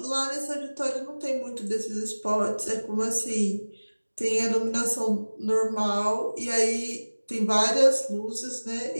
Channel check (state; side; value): inverted; both; correlation -1.00